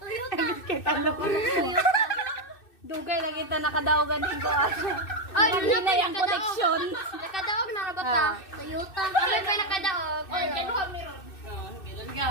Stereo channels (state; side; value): late; right; 2.6 ms